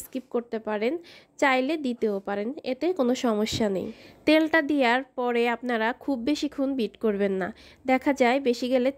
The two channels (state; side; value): identical; both; correlation 1.00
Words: স্কিপ করতে পারেন, চাইলে দিতেও পারেন, এতে কোনো সমস্যা নেই। তেলটা দেওয়ার পরে আপনারা খুব বেশিক্ষণ বিট করবেন না, দেখা যায় বেশি গেলে